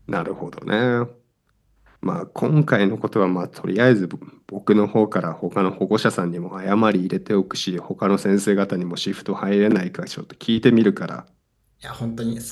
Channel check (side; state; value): both; identical; correlation 1.00